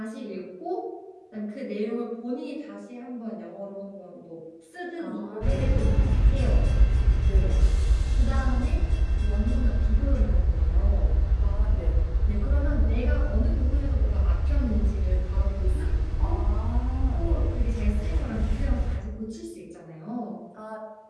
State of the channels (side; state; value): both; identical; correlation 1.00